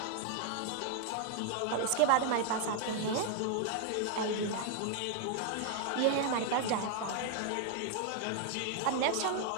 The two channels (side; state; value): both; different; correlation 0.00